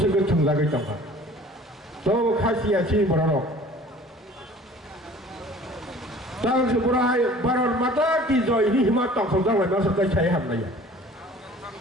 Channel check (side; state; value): both; normal; correlation 0.48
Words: थुंलागै दंखा तो खासिया सिनि बर' दं तांसो बर'हाय भारत माता की जय नि हिमा तंखौ दांलाय मा सरकाय साय हाबनाया